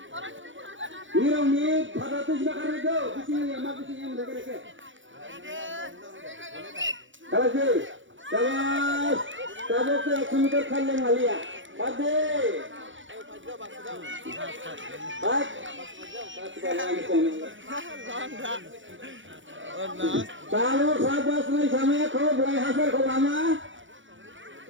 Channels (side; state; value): left; late; 0.56 ms